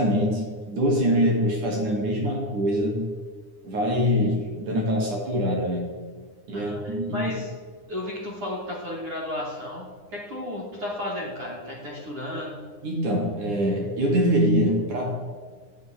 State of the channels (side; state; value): left; late; 9.8 ms